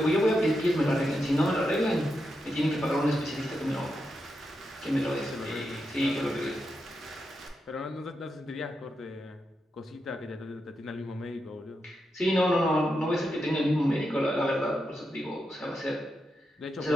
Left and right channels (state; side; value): normal; both; correlation 0.86